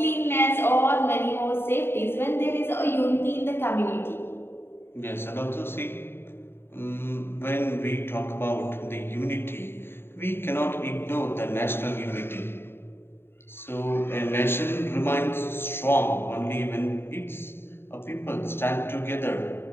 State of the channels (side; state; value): right; late; 0.11 ms